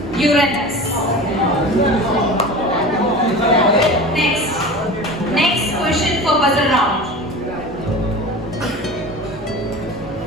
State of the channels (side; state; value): both; normal; correlation 0.34